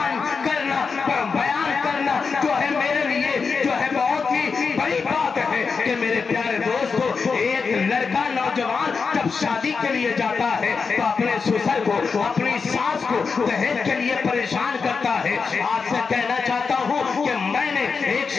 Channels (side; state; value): right; quieter; 5.1 dB